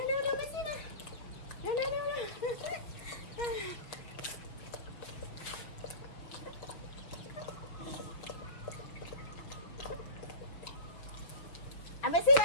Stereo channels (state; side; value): late; right; 6.0 ms